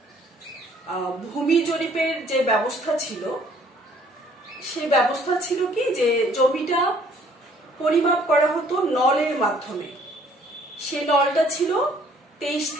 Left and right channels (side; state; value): both; normal; correlation 0.60